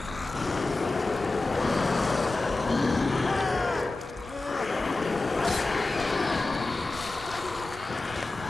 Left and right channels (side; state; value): right; quieter; 3.2 dB